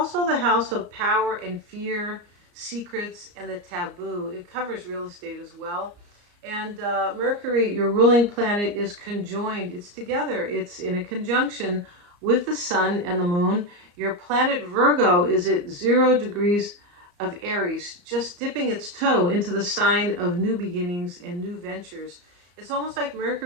the house of power and fear, secrets, and the taboo. It covers real estate as well. And Mercury, your ruling planet, is conjoined. It's together. It's in a conjunction with the sun and the moon. Your planet Virgo is at 0 degrees of Aries, just dipping its toe into the sign of new beginnings and new ventures. It's almost like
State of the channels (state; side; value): late; left; 34 ms